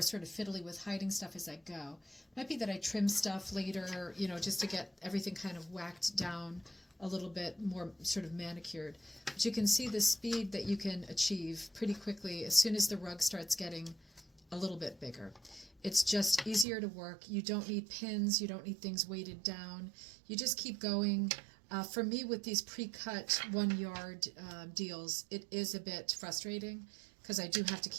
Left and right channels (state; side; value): drops out; left; at 16.7 s